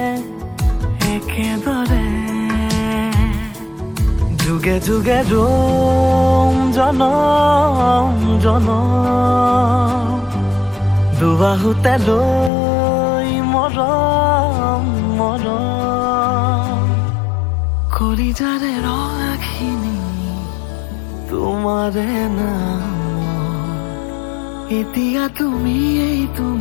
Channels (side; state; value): right; drops out; at 12.5 s